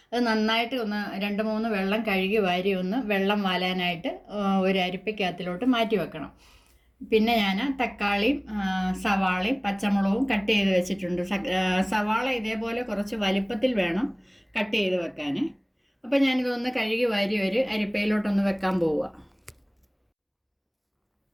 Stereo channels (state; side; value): identical; both; correlation 1.00